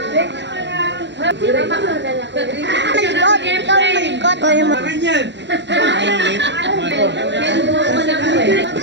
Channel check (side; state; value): left; late; 0.52 ms